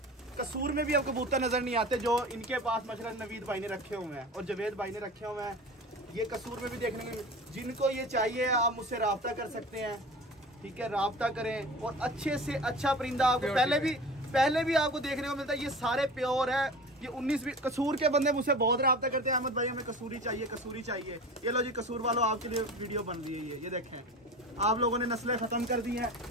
कसूर में भी अब कबूतर नजर नहीं आते जो इनके पास माशाल्लाह नवीद भाई ने रखे हुए हैं और जवेद भाई ने रखे हुए हैं। ये कसूर में भी देखने को, जिनको ये चाहिए आप मुझसे रब्ता कर सकते हैं। ठीक है, रब्ता करें और अच्छे से अच्छा परिंदा आपको पहले भी आपको देखने को मिलता है। ये सारे प्योर है। ये 19-20 कसूर के बंदे मुझसे बहुत रब्ता करते हैं, अहमद भाई हमें कसूरी चाहिए, कसूरी चाहिए। ये लो जी, कसूर वालों आपके लिए वीडियो बन रही है। ये देखें, आप लोगों ने नस्लें खत्म कर दी हैं।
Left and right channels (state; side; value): normal; both; correlation 0.35